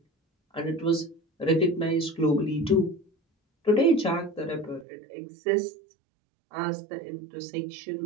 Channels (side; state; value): left; drops out; at 4.9 s